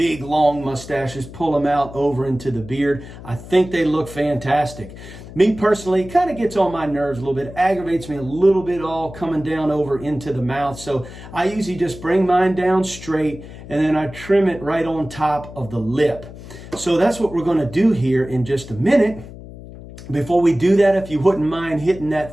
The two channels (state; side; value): noise; left; hum, 15 dB below the sound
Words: long mustaches, pull them out over into the beard. I think they look fantastic. Me personally, it kind of gets on my nerves a little bit, aggravates me a little bit all coming down over into the mouth. So I usually just bring mine down straight and then I trim it right on top of the lip. So that's what we're going to do here in just a minute. Before we do that, if you wouldn't mind hitting